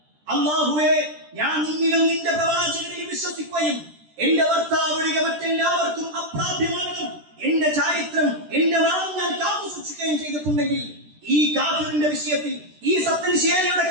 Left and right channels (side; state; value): left; late; 13 ms